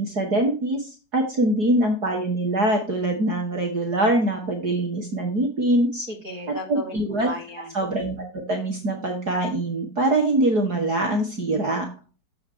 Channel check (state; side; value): late; left; 4.8 ms